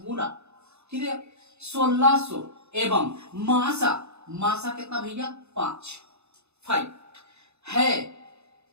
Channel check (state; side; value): late; left; 0.81 ms